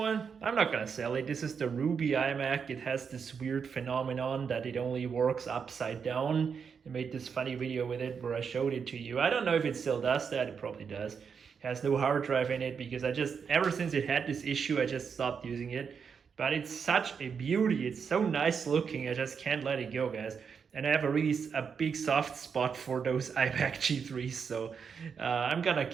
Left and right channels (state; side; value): quieter; left; 6.4 dB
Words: I'm not gonna sell it. This is the Ruby iMac. It has this weird phenomenon that it only works upside down. I made this funny video with it where I showed it to you. I don't know if it still does that. It probably does. Has no hard drive in it, because ever since it had this issue, I just stopped using it. But it's such a beauty. It's so nice looking. I just can't let it go, guys. And I have a big soft spot for those iMac G3s, so I'm gonna